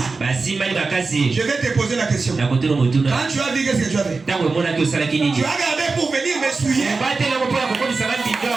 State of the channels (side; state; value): left; quieter; 4.1 dB